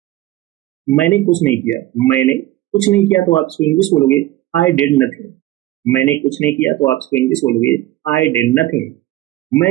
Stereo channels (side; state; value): left; quieter; 15.6 dB